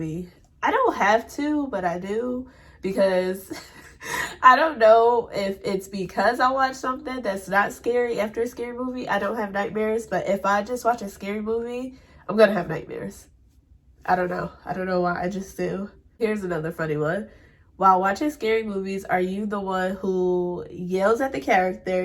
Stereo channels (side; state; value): both; identical; correlation 1.00